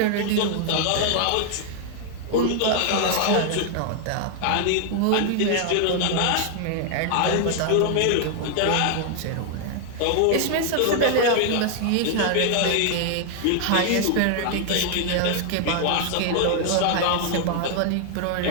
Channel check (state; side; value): different; both; correlation 0.00